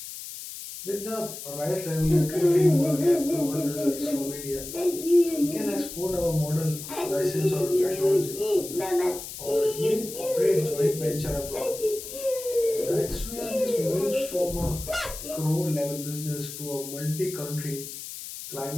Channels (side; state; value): left; noise; hiss, 10 dB below the sound